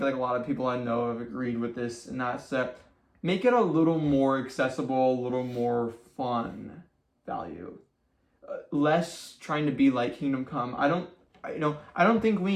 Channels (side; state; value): both; identical; correlation 1.00